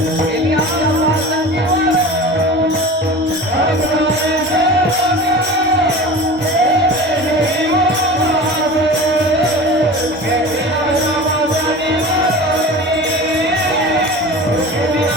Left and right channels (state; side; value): normal; both; correlation 0.35